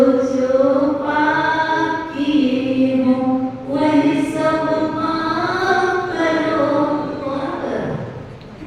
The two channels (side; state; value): both; identical; correlation 1.00